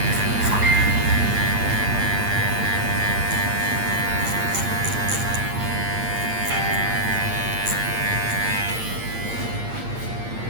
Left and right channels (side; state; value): left; late; 8.9 ms